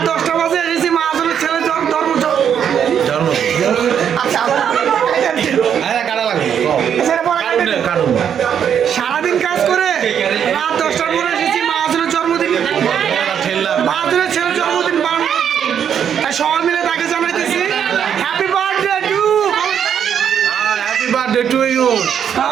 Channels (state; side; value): quieter; left; 8.5 dB